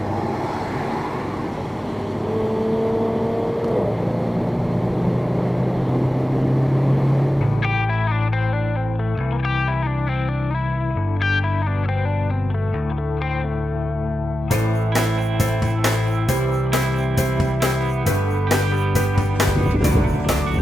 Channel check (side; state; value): both; normal; correlation 0.92